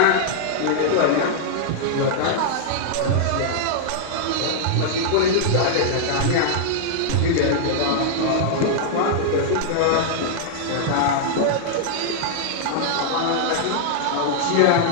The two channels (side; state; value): both; different; correlation -0.01